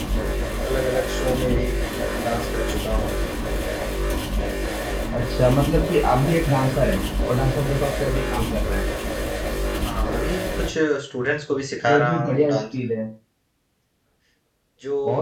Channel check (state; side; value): identical; both; correlation 1.00